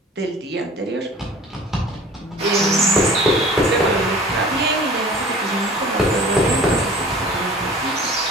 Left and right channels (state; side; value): normal; both; correlation 0.45